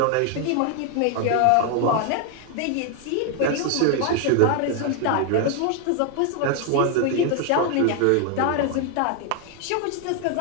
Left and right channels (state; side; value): different; both; correlation 0.01